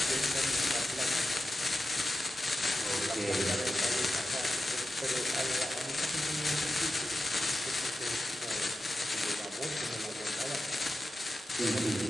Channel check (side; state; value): both; normal; correlation 0.91